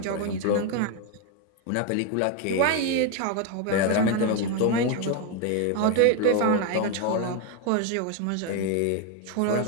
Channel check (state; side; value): different; both; correlation 0.01